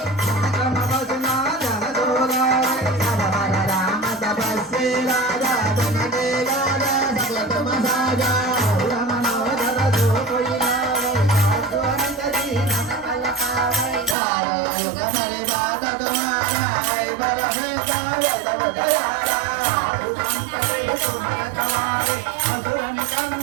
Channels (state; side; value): drops out; left; at 14.2 s